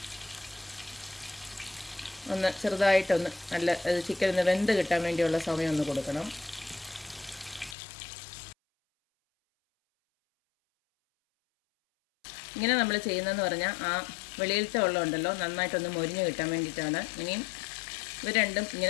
ഒന്ന് ചെറുതായിട്ടൊന്ന് നല്ല ചിക്കൻ ഒന്ന് വെന്ത് കിട്ടാൻ വേണ്ടിയുള്ള സമയം ഒന്ന് കൊടുക്കണം. ഇങ്ങനെ നമ്മൾ ചെയ്യുന്നതെന്ന് പറഞ്ഞാൽ ആ വെളിയിലത്തെ വെള്ളം ഉണ്ടല്ലോ നന്നായിട്ടൊന്ന് മൊരിഞ്ഞ് കിട്ടാൻ വേണ്ടിയിട്ടാണ്. ഇനിയും ഇവ രണ്ടും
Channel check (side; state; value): right; drops out; at 7.8 s